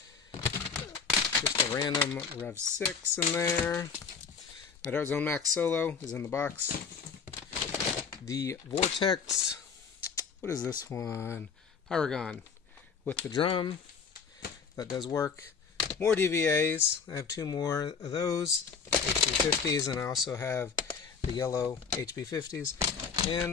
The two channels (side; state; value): right; quieter; 5.9 dB